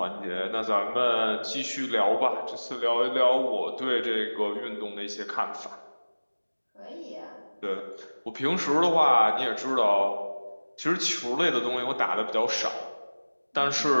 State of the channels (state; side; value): inverted; both; correlation -1.00